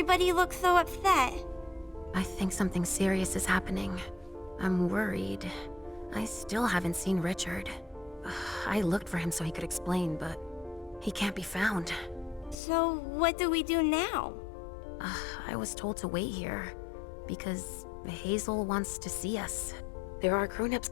look so upset? I think something serious is happening. I'm worried. I still haven't seen Richard. I looked for him so he could explain, but he can't be found. So what do we do now? I was told to wait here because Hazel wants to see us. There are grown-ups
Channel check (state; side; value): drops out; right; at 12.6 s